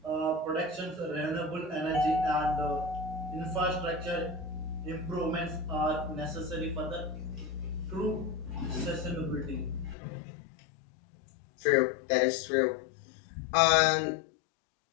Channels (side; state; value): right; drops out; at 10.0 s